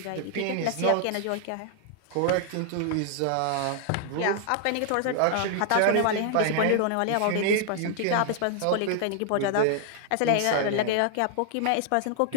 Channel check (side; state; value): both; different; correlation 0.00